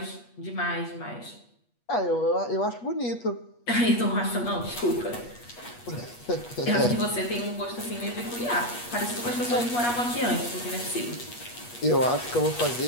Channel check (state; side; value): late; right; 8.3 ms